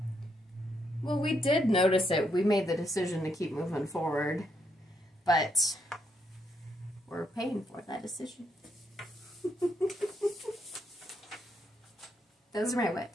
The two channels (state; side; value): normal; both; correlation 0.77